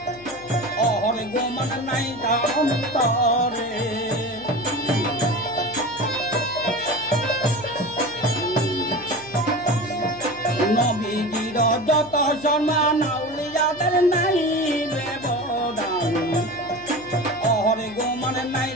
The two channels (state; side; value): noise; left; hum, 20 dB below the sound